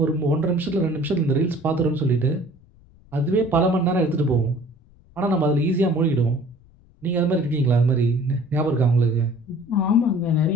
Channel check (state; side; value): noise; left; rumble, 28 dB below the sound